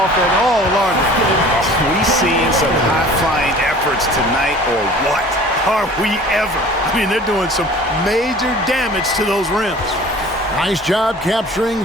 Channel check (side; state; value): both; normal; correlation 0.46